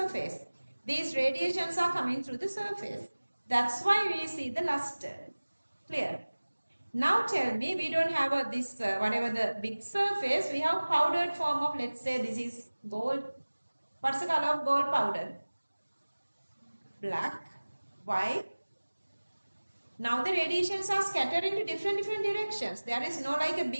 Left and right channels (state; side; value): inverted; both; correlation -1.00